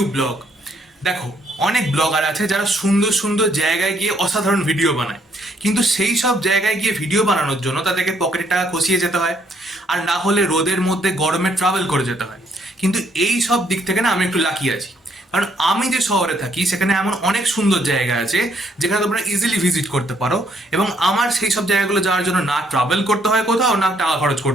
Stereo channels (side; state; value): both; normal; correlation 0.70